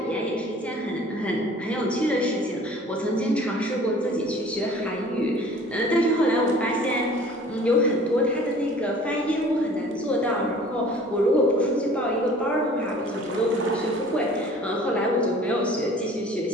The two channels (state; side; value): normal; both; correlation 0.49